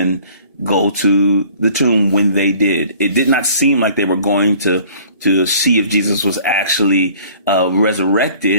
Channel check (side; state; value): both; inverted; correlation -0.52